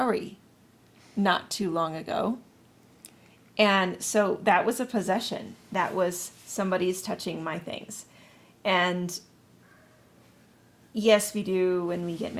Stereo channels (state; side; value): identical; both; correlation 1.00